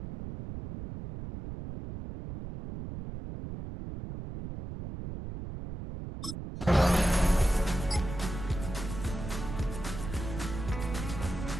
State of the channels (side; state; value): right; noise; rumble, 8 dB below the sound